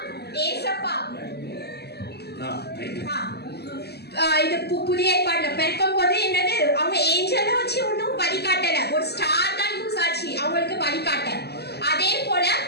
ஏசப்பா இது புதிய ஏற்பாடுல பிறக்கும் போது என்னது அவங்க ஏஞ்சலை வச்சு ஒன்றும் வழிகாட்டல, ஒரு ஸ்டார் தான் யூஸ் ஆச்சு அவங்களுக்கு வழிகாட்ட. அதே போல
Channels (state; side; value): late; right; 0.47 ms